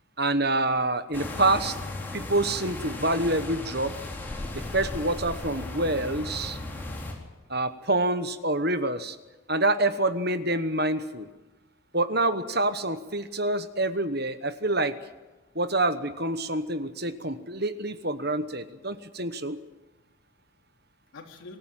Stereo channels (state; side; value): normal; both; correlation -0.16